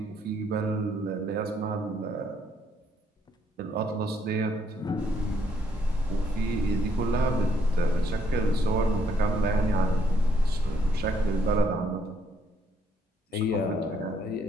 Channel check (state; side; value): normal; both; correlation 0.70